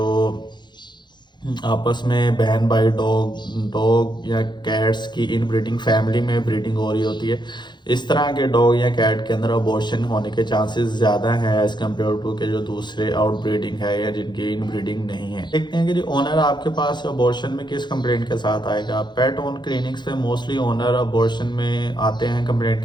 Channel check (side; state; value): right; late; 0.21 ms